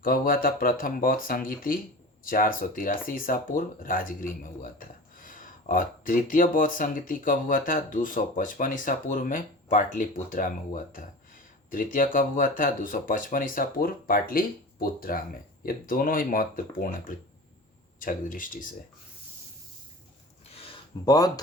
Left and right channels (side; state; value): both; normal; correlation 0.35